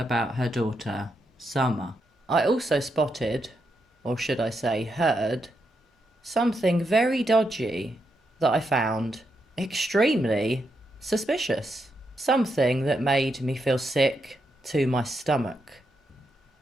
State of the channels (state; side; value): normal; both; correlation 0.82